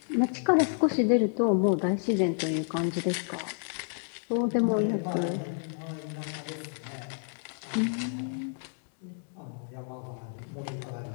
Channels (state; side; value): silent; right; 58 dB below the other